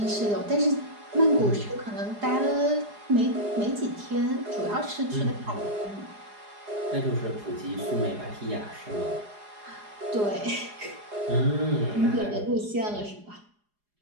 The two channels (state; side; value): late; left; 4.8 ms